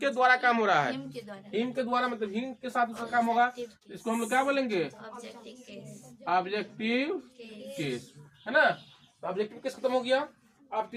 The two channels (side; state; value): both; identical; correlation 1.00